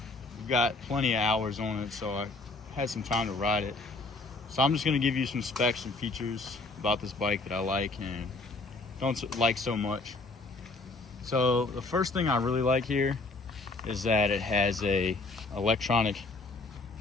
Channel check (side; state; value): right; quieter; 3.4 dB